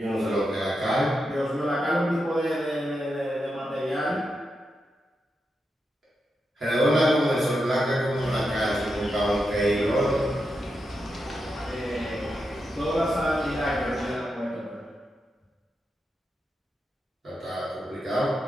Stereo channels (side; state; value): both; normal; correlation 0.86